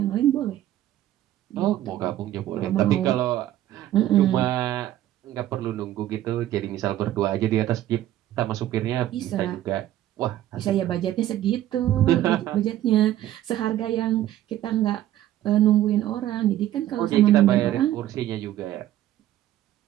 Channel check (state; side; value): quieter; left; 13.1 dB